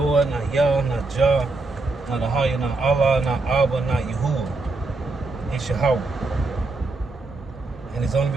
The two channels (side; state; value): left; quieter; 3.4 dB